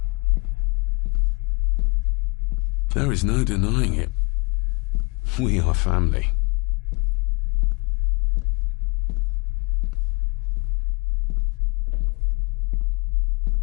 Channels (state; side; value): quieter; right; 30.0 dB